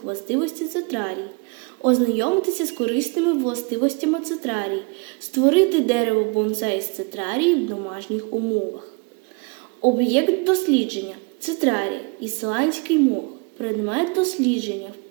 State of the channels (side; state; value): left; quieter; 30.8 dB